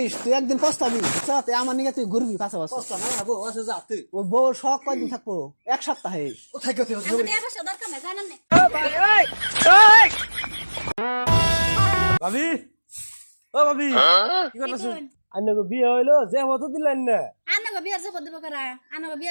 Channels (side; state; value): both; inverted; correlation -1.00